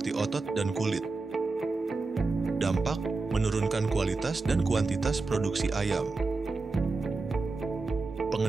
otot dan kulit. Dampak, menurunkan kualitas dan kuantitas produksi ayam.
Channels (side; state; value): left; quieter; 3.8 dB